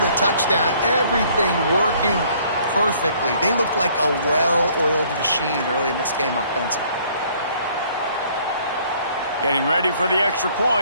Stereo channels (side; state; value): both; inverted; correlation -0.60